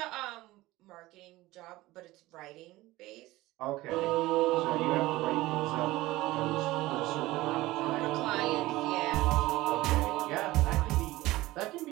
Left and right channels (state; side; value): quieter; left; 18.3 dB